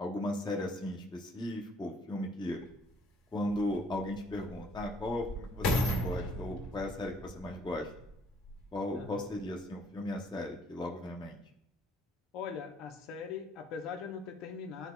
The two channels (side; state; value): both; normal; correlation 0.63